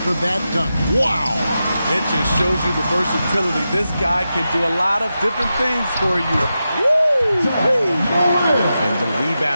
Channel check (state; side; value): inverted; both; correlation -0.90